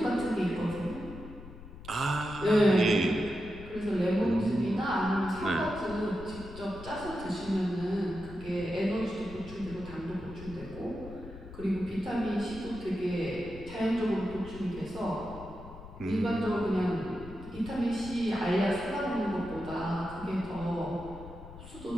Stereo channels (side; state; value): left; noise; rumble, 14 dB below the sound